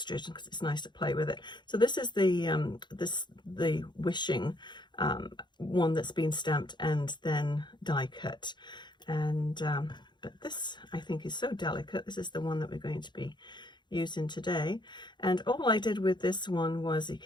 because it's nice to play with it. So this is the wishing one that's been stamped and then die cut, and but this I think is so delicate. This is the one that we're going to be using today. And all I did with this one was, you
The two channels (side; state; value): right; late; 0.22 ms